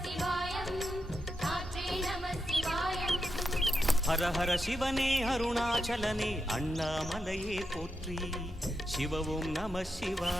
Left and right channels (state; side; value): normal; both; correlation 0.85